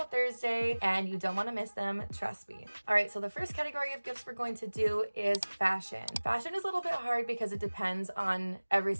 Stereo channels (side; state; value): both; inverted; correlation -1.00